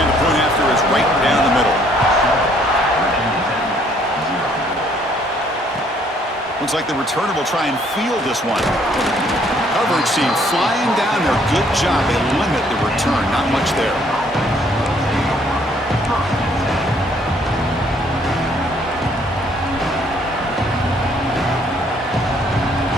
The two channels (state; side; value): normal; both; correlation 0.64